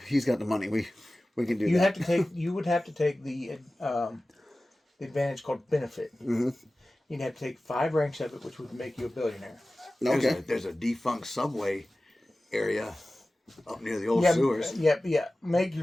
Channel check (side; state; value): both; normal; correlation 0.96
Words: he's got the money. We can do that. You would have to take the advantage called benefit. Mm-hmm. You'd have to take 5 ranks of it, which would make you a billionaire. Okay. There's a defunct subway area up near the old Yeah, sewers. yeah. Make